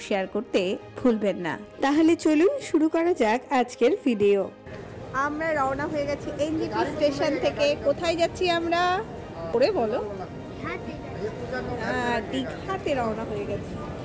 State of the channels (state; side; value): identical; both; correlation 1.00